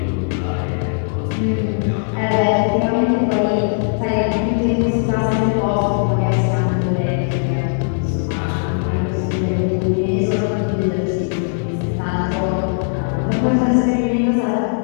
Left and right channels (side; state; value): right; silent; 56 dB below the other